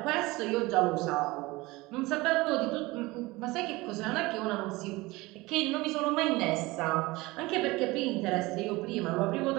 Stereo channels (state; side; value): quieter; left; 21.5 dB